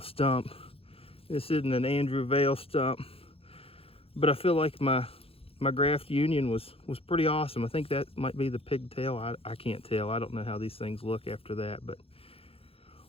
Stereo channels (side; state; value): right; late; 0.27 ms